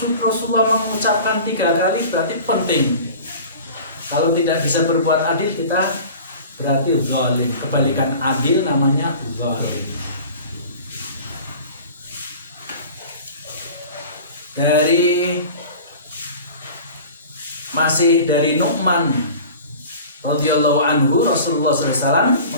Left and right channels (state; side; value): inverted; both; correlation -0.40